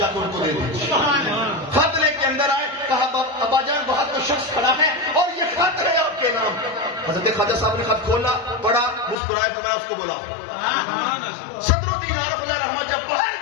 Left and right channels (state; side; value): drops out; right; at 9.2 s